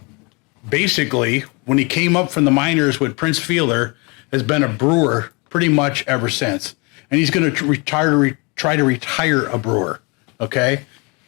basically, when he came up from the minors with Prince Fielder, has been a brewer pretty much ever since. And he's going to try to retire a brewer, okay?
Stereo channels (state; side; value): quieter; right; 29.8 dB